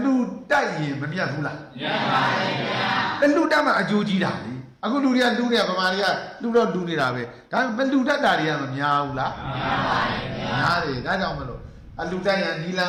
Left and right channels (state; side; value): identical; both; correlation 1.00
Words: လူတိုက်ရင်မမြတ်ဘူးလားမြတ်ပါရဲ့ဗျာအလူတက်မှအကျိုးကြီးတာလေအခုလူတွေကလူတွေကဗမာတွေကလူတော့လူနေတာပဲဒါပေမဲ့လူတတ်တာတွေကမများဘူးလားများပါရဲ့ဗျာများတယ်ဒါကြောင့်မလို့အလူတက်ရနီလန်